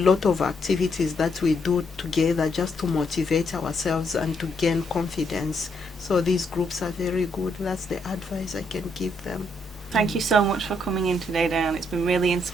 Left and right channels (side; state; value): both; normal; correlation 0.75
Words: of activities that we do together just to motivate ourselves and to gain confidence. So these groups are very good. That's the advice I can give them. Thank you so much for coming in today, Dianne. It's been really